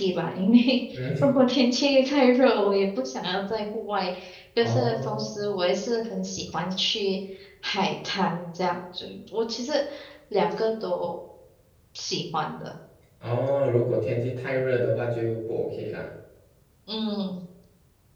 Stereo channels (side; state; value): both; identical; correlation 1.00